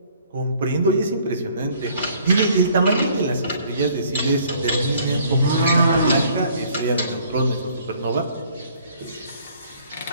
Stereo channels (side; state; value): both; inverted; correlation -0.59